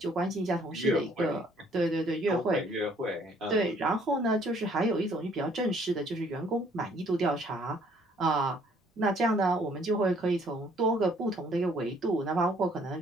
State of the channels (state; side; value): normal; both; correlation 0.62